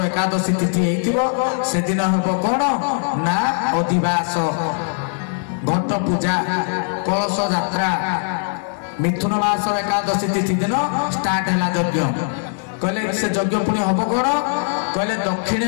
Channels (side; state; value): right; silent; 66 dB below the other